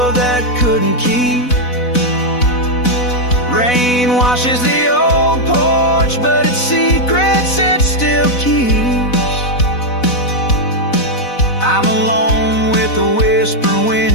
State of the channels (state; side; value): late; right; 4.0 ms